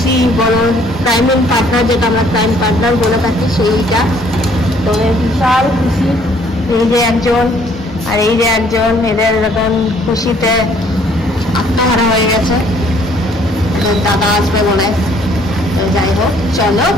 বড় ক্রাইম পার্টনার, যেটা আমরা ক্রাইম পার্টনার বলে থাকি, সেইটা। তো বিশাল খুশি। এই যে একজন আর এই যে একজন, এদের এরকম খুশিতে আত্মহারা হয়ে গেছে। দাদা আসবে বলে। তো যাই হোক, চলো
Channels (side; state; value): both; normal; correlation 0.61